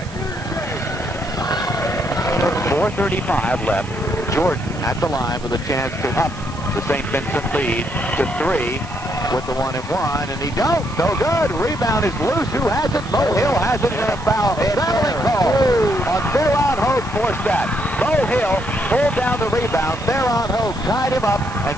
4:35 left. Jordan at the line with a chance to up the St. Vincent lead to 3. With the 1-and-1, and he don't. No good. Rebound is loose. Who has it? Bo Hill has it in a foul. Fouling call on Baron Hogue forced that. Bo Hill pulled down the rebound. Baron Hogue tied him up and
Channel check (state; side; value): noise; right; hiss, 20 dB below the sound